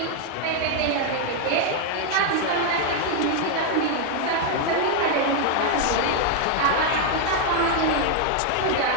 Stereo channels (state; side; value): different; both; correlation 0.00